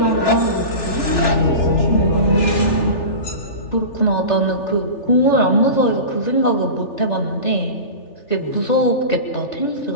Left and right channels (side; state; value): right; late; 3.4 ms